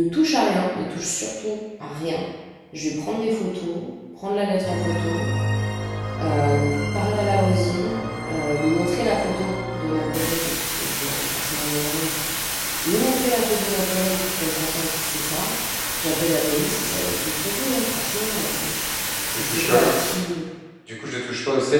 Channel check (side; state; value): both; identical; correlation 1.00